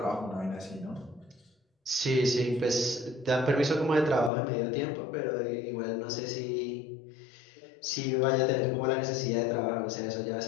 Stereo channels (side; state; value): right; drops out; at 4.3 s